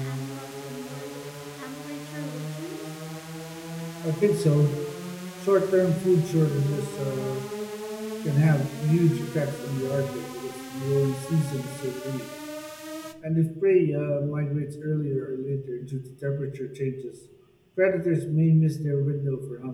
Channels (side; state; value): both; identical; correlation 1.00